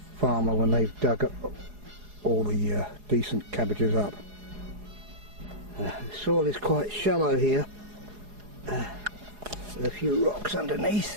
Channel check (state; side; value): late; left; 4.8 ms